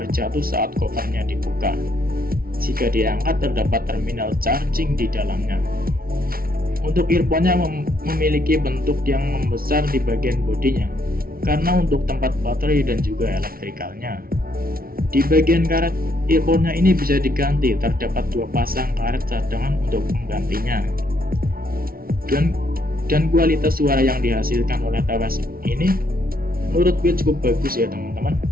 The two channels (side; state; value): left; late; 0.43 ms